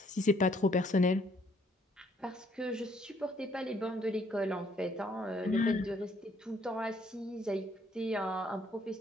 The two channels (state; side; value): normal; both; correlation 0.66